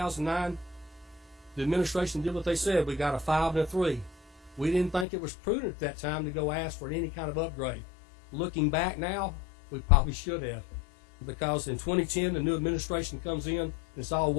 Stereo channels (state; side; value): drops out; right; at 5.1 s